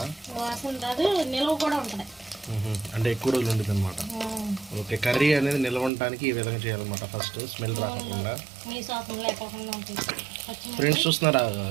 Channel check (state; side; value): drops out; left; at 5.9 s